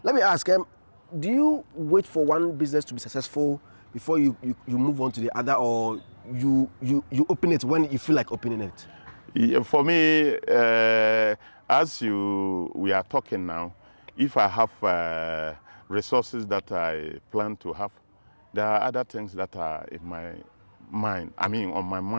Let me ask, do you wait for one business to be successful before you move on to the other, or you open it when you feel like opening it? Yeah, for me, as we are talking now, if I have resources that I plan to have, there are other things that are in my mind, on my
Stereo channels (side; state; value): both; inverted; correlation -1.00